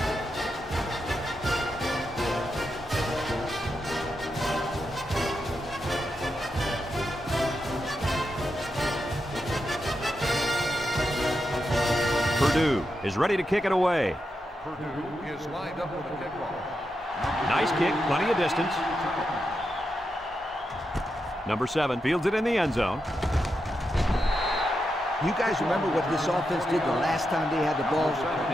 Purdue is ready to kick it away. Purdue is lined up with a kickoff. Nice kick, plenty of distance. Number 7 fields it in the end zone. You guys remember what this offense did the last time they had the ball?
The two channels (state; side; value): normal; both; correlation 0.86